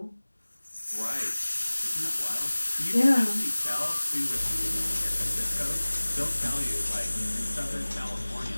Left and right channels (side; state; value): both; inverted; correlation -1.00